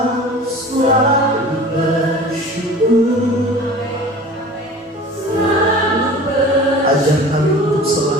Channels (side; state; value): both; normal; correlation 0.41